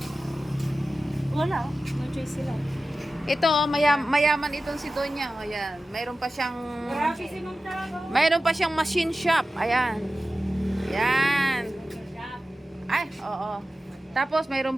Wala, no choice sila. Ito, mayaman itong si Donya. O, ayan. Mayroon pa siyang Grabe si Ma'am talaga. mayroon pa siyang machine shop. Ayan. Yan. Ay, oo. Tapos mayroon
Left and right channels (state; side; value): normal; both; correlation 0.94